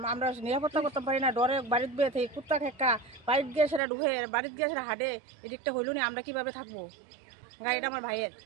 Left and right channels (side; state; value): left; drops out; at 3.8 s